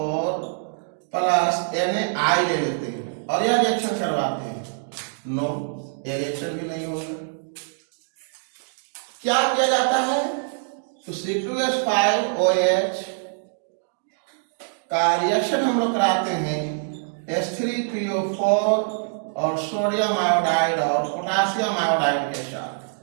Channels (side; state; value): left; silent; digital silence